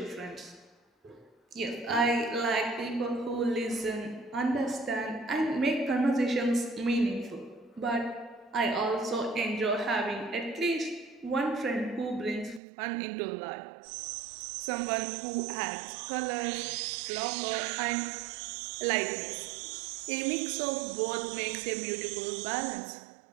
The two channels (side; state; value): left; drops out; at 12.6 s